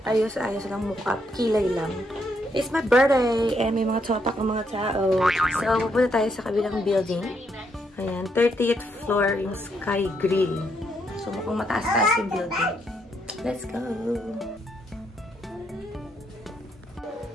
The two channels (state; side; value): normal; both; correlation 0.76